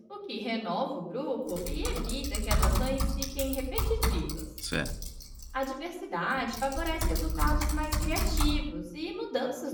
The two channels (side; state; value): both; identical; correlation 1.00